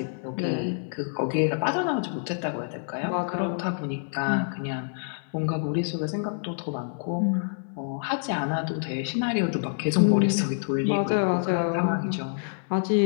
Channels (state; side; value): silent; right; digital silence